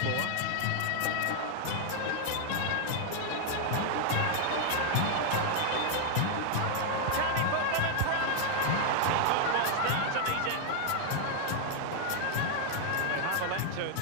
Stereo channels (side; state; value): both; different; correlation 0.00